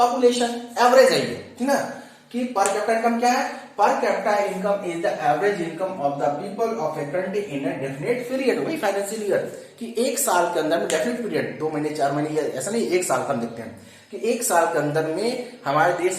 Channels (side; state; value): both; identical; correlation 1.00